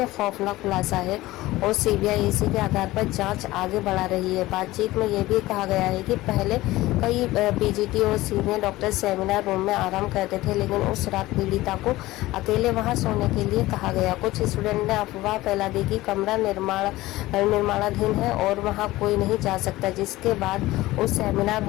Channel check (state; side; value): quieter; right; 17.9 dB